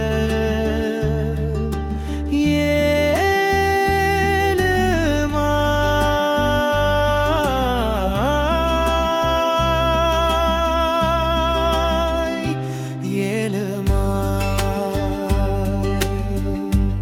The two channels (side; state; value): both; identical; correlation 1.00